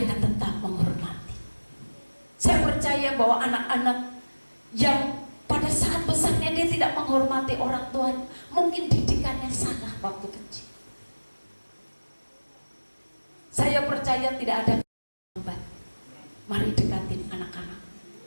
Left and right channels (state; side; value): inverted; both; correlation -1.00